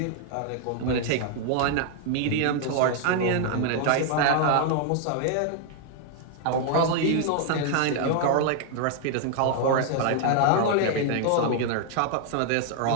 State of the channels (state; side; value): different; both; correlation 0.00